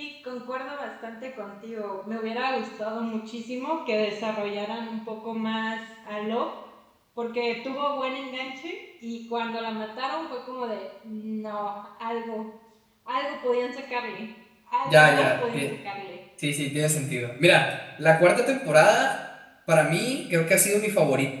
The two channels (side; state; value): both; identical; correlation 1.00